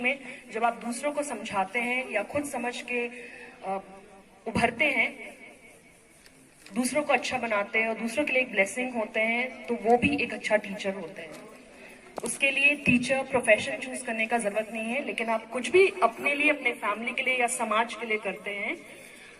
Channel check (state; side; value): identical; both; correlation 1.00